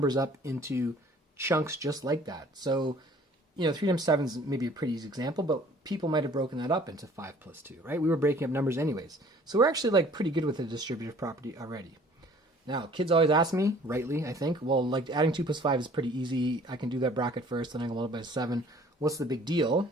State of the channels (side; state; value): both; normal; correlation 0.53